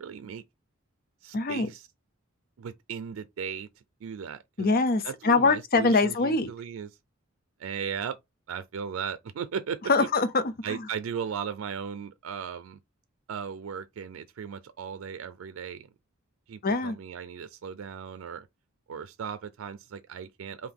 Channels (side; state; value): both; normal; correlation 0.00